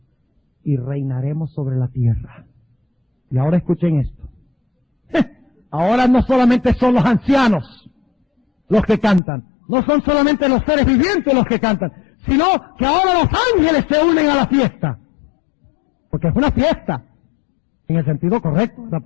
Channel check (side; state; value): right; drops out; at 9.2 s